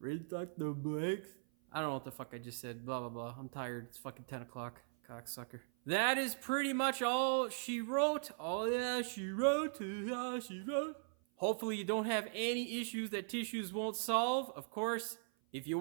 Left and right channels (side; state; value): left; silent; 51 dB below the other